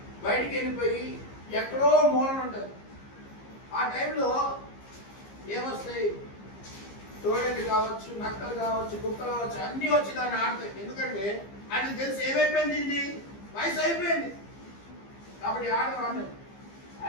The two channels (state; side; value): late; right; 15 ms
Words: వెళ్ళిపోయి ఎక్కడో మూలన ఉంటుంది. ఆ టైంలో ఏమొస్తాయి? తోడేళ్ళు కావచ్చు, నక్కలు కావచ్చు, కుక్కలు కావచ్చు, అన్నీ వచ్చి దాన్ని ఆడతాయి. ఎందుకంటే అది తెలిసి ఏమైపోయింది? ఇది వయసు అయిపోయింది కాబట్టి ఆడవాడిని.